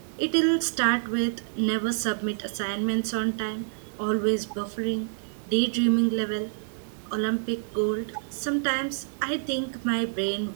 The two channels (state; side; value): silent; left; digital silence